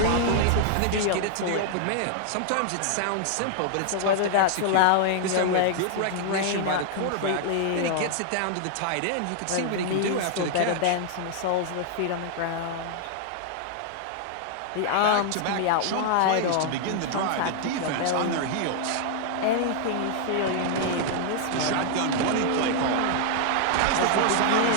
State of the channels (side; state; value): both; different; correlation 0.00